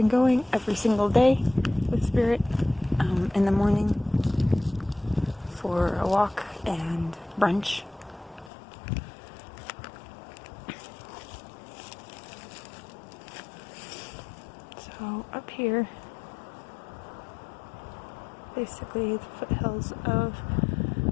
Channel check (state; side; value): drops out; right; at 8.5 s